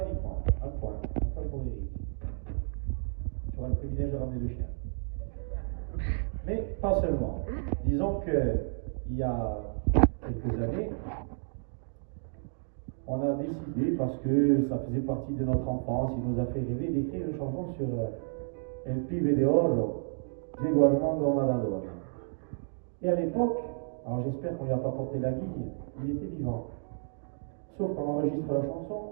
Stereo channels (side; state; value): left; silent; digital silence